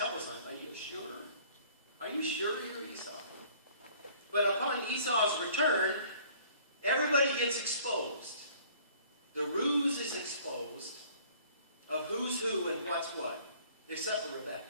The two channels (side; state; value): both; inverted; correlation -0.54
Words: of times, are you sure? Are you sure you're Esau? But upon Esau's return, everybody gets exposed. The ruse is exposed of who's who and what's what, except for Rebecca.